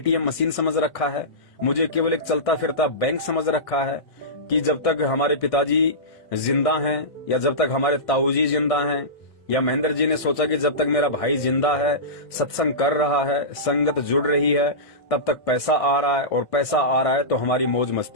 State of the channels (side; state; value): right; late; 1.6 ms